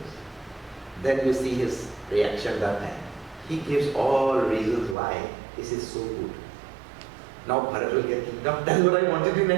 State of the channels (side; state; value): left; drops out; at 5.0 s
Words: then you see his reaction that time. He gives all reasons why this is so good. Now Bharat will get kingdom. That's what I wanted in